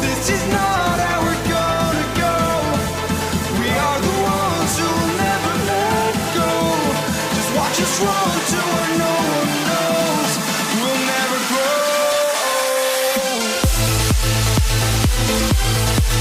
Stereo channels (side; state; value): both; identical; correlation 1.00